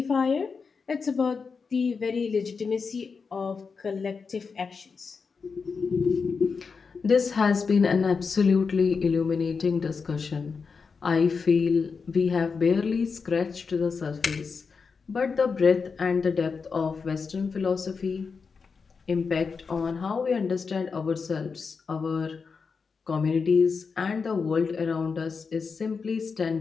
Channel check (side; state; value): right; quieter; 5.2 dB